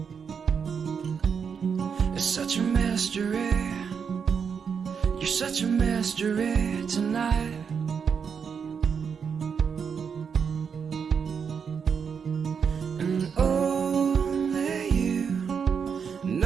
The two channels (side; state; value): left; quieter; 6.6 dB